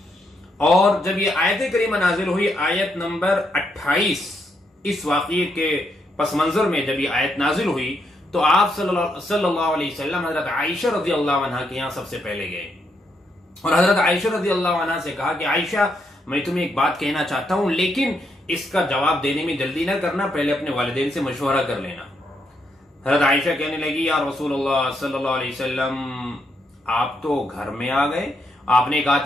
اور جب یہ آیت کریمہ نازل ہوئی آیت نمبر 28، اس واقعے کے پس منظر میں جب یہ آیت نازل ہوئی تو آپ صلی اللہ علیہ وسلم حضرت عائشہ رضی اللہ عنہ کے یہاں سب سے پہلے گئے اور حضرت عائشہ رضی اللہ عنہ سے کہا کہ عائشہ میں تمہیں ایک بات کہنا چاہتا ہوں، لیکن اس کا جواب دینے میں جلدی نہ کرنا، پہلے اپنے والدین سے مشورہ کر لینا۔ حضرت عائشہ کہنے لگی یا رسول اللہ صلی اللہ علیہ وسلم آپ تو گھر میں آ گئے، آپ نے کہا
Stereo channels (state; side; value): normal; both; correlation 0.78